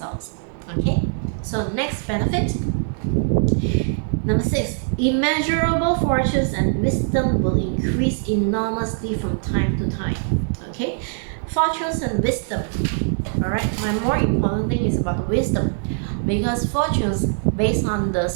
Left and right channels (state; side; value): silent; left; 64 dB below the other